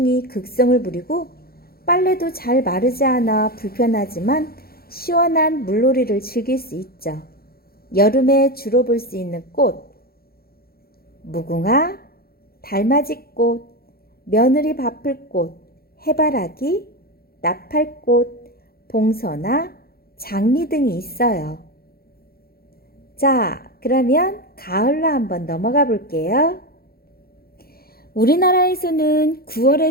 극성을 부리고 빨래도 잘 마르지 않아 불편하지만 시원한 물놀이를 즐길 수 있죠. 여름에 주로 볼 수 있는 꽃, 무궁화, 달맞이꽃, 며느리바풀꽃, 해바라기, 나팔꽃, 봉선화, 장미 등이 있어요. 자, 그러면 가을로 한번 넘어가 볼게요. 우리나라에서는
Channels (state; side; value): late; right; 0.44 ms